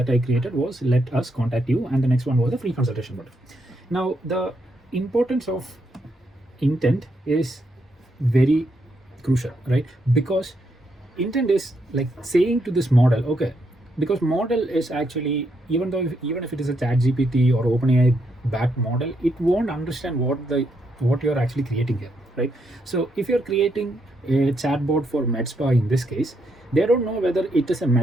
I created was let us contact you, and the next one was the free consultation button. Now the importance of intent is very crucial, right? Because intent is like saying to this model, okay, because model is actually, even if it is a chat GPT or OpenAI backed model, it won't understand what you're actually creating here, right? So if you're creating a chatbot for med spa, in this case, they don't know whether it is a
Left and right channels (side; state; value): both; normal; correlation 0.78